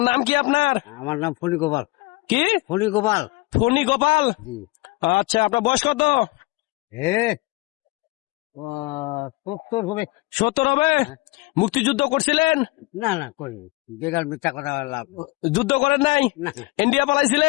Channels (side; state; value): right; quieter; 22.3 dB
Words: নাম কি আপনার? আমার নাম ফণি গোপাল। কি? ফণি গোপাল। ফণি গোপাল। জি। আচ্ছা আপনার বয়স কত? হে ও 70 হবে। 70 হবে? মুক্তিযুদ্ধ করছিলেন? না না করি বেকার মিথ্যা কথা লাভ। যুদ্ধ করেন নাই? না ইন্ডিয়া